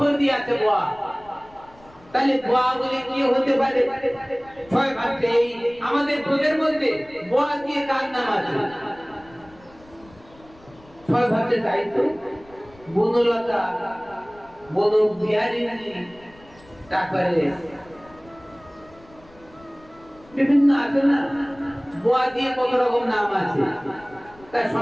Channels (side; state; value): left; noise; rumble, 26 dB below the sound